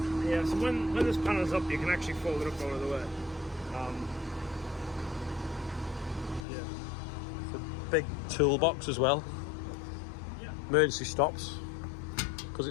Yeah, so when this panel's up, you can actually fold it up out of the way. Yeah. It's a big toolbox as well. Yeah. Emergency stops. Because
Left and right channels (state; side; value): drops out; right; at 6.5 s